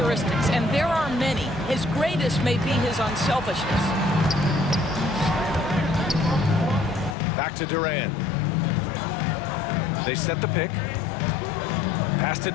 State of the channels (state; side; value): drops out; right; at 7.2 s